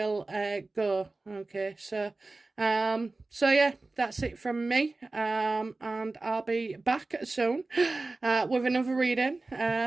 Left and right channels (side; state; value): left; quieter; 3.3 dB